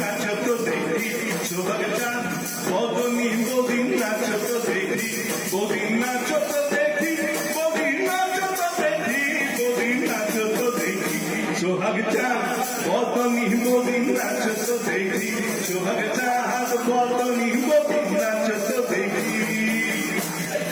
দেখি, সোহাগ চাঁদ বদনী বদিন নাচত দেখি, বদিন নাচত দেখি, বদিন নাচত দেখি, বদিন নাচত দেখি। সোহাগ চাঁদ বদনী বদিন নাচত দেখি, সোহাগ চাঁদ বদনী বদিন নাচত দেখি।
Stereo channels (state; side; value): identical; both; correlation 1.00